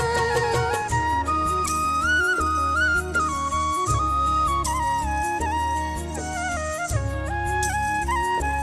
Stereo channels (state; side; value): identical; both; correlation 1.00